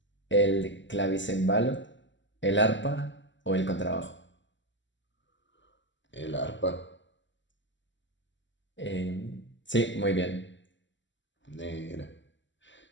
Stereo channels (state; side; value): late; right; 0.54 ms